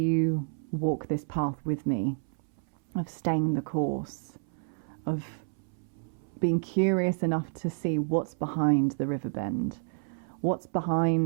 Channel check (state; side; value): silent; left; 58 dB below the other